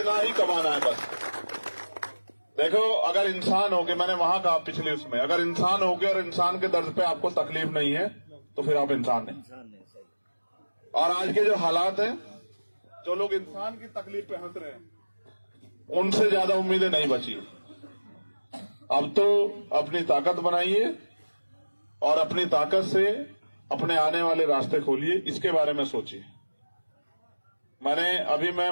ही कमाना है बस। देखो, अगर इंसान हो के, मैंने वहां कहा पिछले उसमें, अगर इंसान हो के और इंसान के दर्द पे आपको तकलीफ नहीं है तो फिर आप इंसान नहीं। और आज के जो हालात हैं, जो लोग इंसान की तकलीफ पे हंस रहे हैं, उनसे ज्यादा उम्मीदें नहीं बची। अब तो अपनी ताकत बनाइए और अपनी ताकत से अपने आने वाले रास्ते खोलिए, इसके बारे में सोचिए। मैं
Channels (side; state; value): both; inverted; correlation -1.00